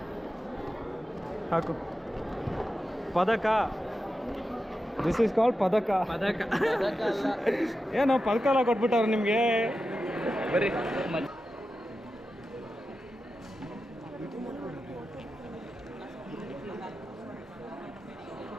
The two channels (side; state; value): both; normal; correlation 0.91